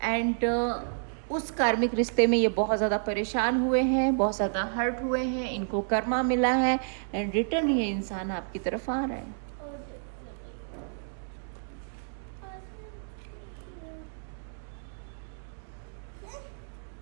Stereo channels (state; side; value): silent; left; digital silence